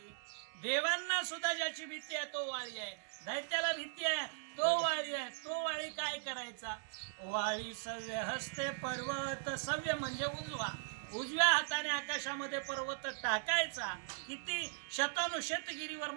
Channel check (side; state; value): left; silent; digital silence